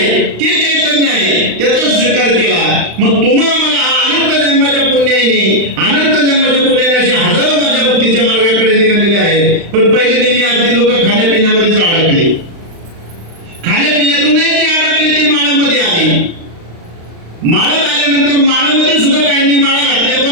ते चैतन्य आहे त्याचा स्वीकार केला. मग तुम्हा मला अनंत जन्माच्या पुण्याने, अनंत जन्माच्या पुण्याने असे हजारो माझ्या भक्तीच्या मार्गाकडे निघालेले आहे. पण पहिले नेहमी अगदी लोक खाण्यापिण्यामध्येच अडकले. खाण्यापिण्यातूनही जे अडकले ते माळामध्ये आले. माळात आल्यानंतर माळामध्ये सुद्धा काहींनी माळा घातल्या,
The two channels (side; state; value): left; late; 35 ms